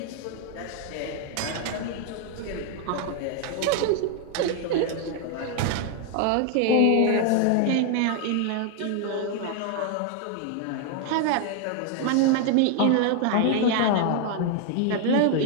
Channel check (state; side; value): different; both; correlation 0.00